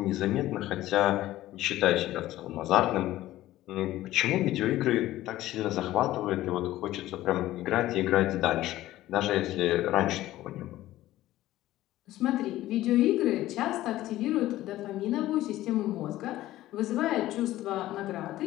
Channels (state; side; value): quieter; right; 15.2 dB